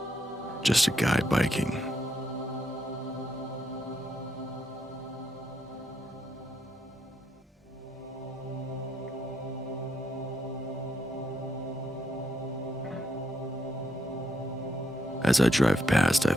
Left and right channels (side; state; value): both; normal; correlation 0.78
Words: Just a guy biking. As I drive past, I